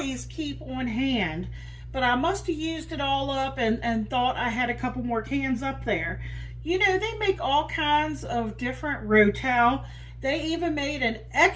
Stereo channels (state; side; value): identical; both; correlation 1.00